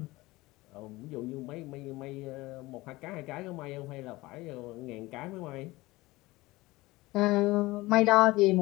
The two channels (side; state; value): right; quieter; 20.2 dB